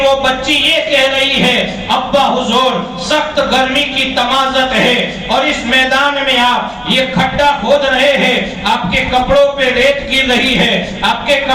بچی یہ کہہ رہی ہے، ابا حضور سخت گرمی کی تمازت ہے اور اس میدان میں آپ یہ کھڈا کھود رہے ہیں، آپ کے کپڑوں پہ ریت گر رہی ہے، آپ کے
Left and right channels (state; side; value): identical; both; correlation 1.00